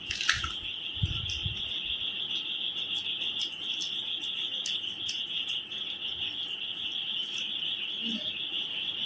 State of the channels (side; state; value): both; identical; correlation 1.00